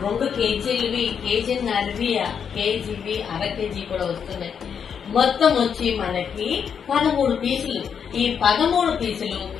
2 కేజీలవి, కేజీన్నరవి, కేజీవి, అర కేజీ కూడా వస్తున్నాయి. మొత్తం వచ్చి మనకి 13 పీసులు. ఈ 13 పీసులు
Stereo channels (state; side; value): quieter; right; 7.3 dB